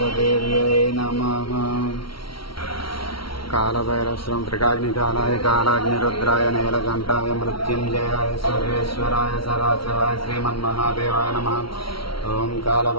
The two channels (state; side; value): late; right; 0.74 ms